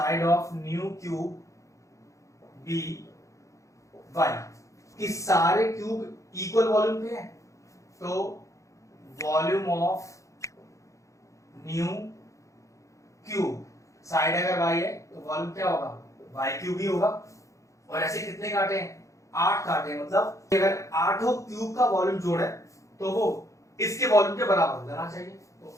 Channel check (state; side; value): late; right; 0.15 ms